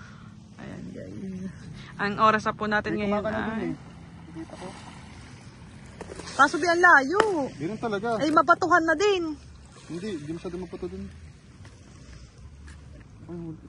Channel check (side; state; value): both; identical; correlation 1.00